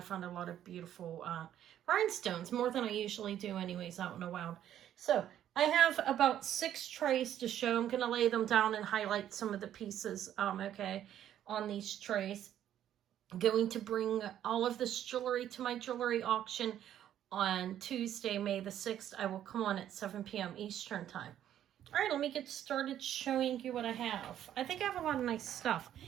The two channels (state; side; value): quieter; left; 11.0 dB